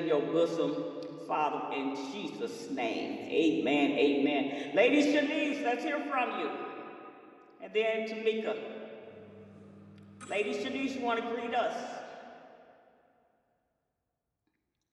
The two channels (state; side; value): identical; both; correlation 1.00